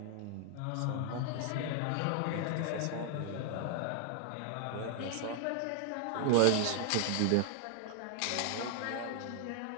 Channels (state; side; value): different; both; correlation 0.00